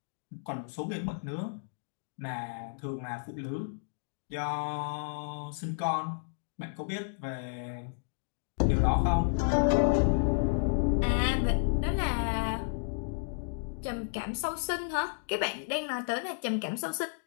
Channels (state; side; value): silent; right; digital silence